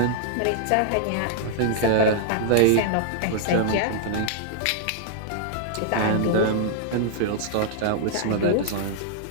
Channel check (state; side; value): different; both; correlation -0.01